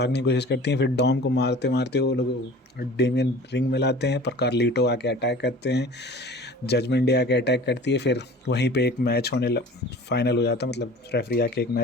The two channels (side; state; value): both; normal; correlation 0.42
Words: की कोशिश करती हैं। फिर डॉम को मारते मारते वो लोग डेमियन रिंग में लाते हैं, पर कार्लिटो आके अटैक करते हैं, जजमेंट डे आके अटैक करती है। फिर वहीं पे एक मैच फाइनल हो जाता है, मतलब रेफरी आके एक